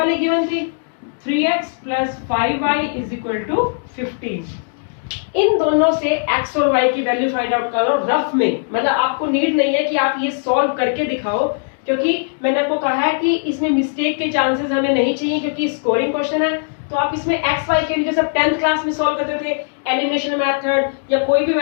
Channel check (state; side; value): silent; right; digital silence